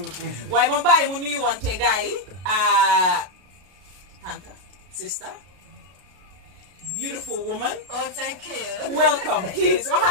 waaye ma bàyyi mu nuyu wante gars yi. Tanta, sister, beautiful woman. Oh, thank you. Welcome, please.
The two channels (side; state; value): left; late; 33 ms